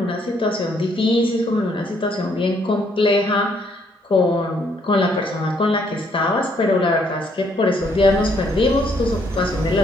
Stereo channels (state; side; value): normal; both; correlation 0.69